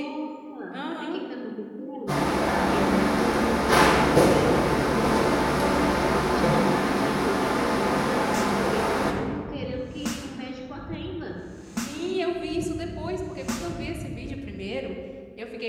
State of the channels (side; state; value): both; identical; correlation 1.00